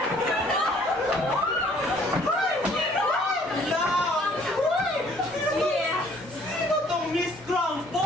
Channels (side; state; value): both; normal; correlation 0.59